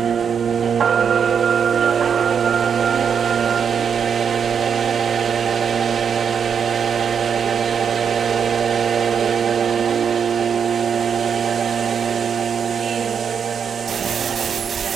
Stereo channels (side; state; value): left; quieter; 7.1 dB